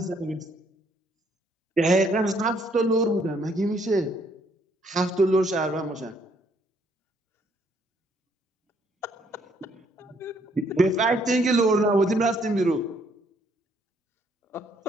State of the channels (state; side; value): normal; both; correlation 0.68